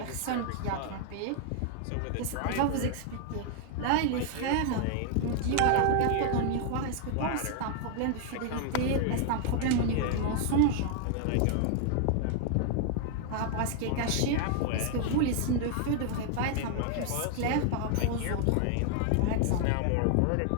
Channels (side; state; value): both; different; correlation 0.00